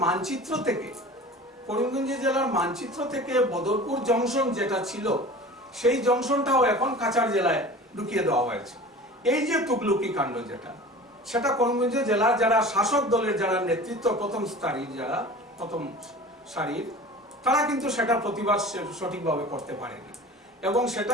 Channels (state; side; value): normal; both; correlation 0.39